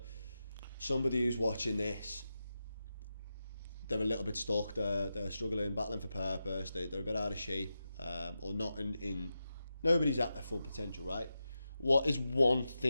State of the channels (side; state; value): both; inverted; correlation -0.90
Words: somebody who's watching this, they're a little bit stuck, they're struggling, battling for purpose, they're a bit out of shape, or not in nobody's at their full potential, right? What is one